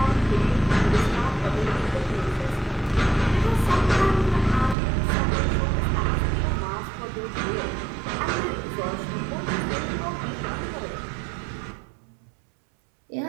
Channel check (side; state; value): left; drops out; at 4.8 s